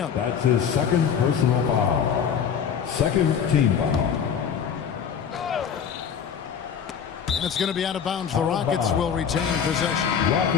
That's his second personal foul. Second team foul. And it's going to be out of bounds. The Rockets will retain possession.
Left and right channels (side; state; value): right; quieter; 7.5 dB